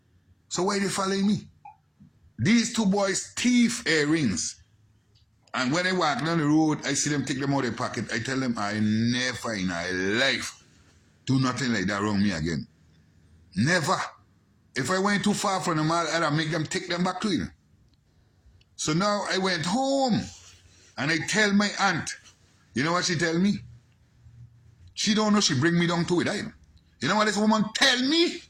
So why they following me? These two boys thief earrings. And when I walk down the road, I see them take them out of their pocket. I tell them, I never in my life do nothing like that around me again. Never. If I went too far from them, I'd make them take them back to you. So now I went home and I tell my aunt, you know what she tell me? She don't know she bring me down to it either. You know what this woman tell me?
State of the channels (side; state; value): both; identical; correlation 1.00